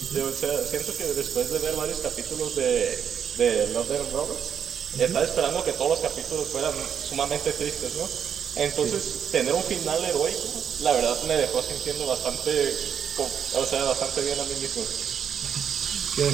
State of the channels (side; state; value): left; quieter; 7.9 dB